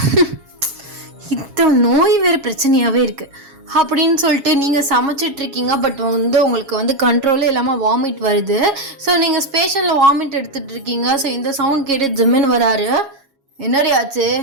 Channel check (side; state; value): left; late; 7.3 ms